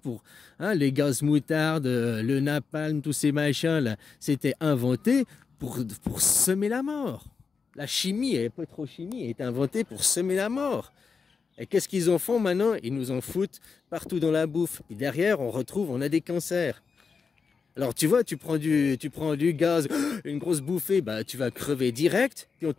les gaz moutarde, le napalm, tous ces machins là. C'était inventé pour semer la mort. La chimie et la pétrochimie a été inventée pour semer la mort. Et qu'est-ce qu'ils en font maintenant? Ils nous en foutent partout dans la bouffe. Et derrière, on a des cancers. Alors tu vois, tu prends du gaz, une grosse bouffée, bah, tu vas crever direct, puis on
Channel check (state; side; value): quieter; right; 5.3 dB